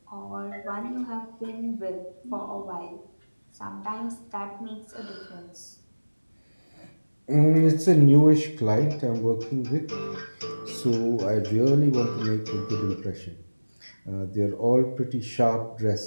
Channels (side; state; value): both; inverted; correlation -1.00